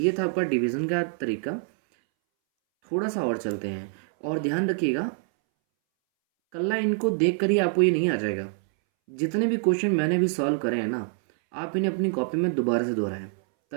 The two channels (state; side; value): silent; left; 61 dB below the other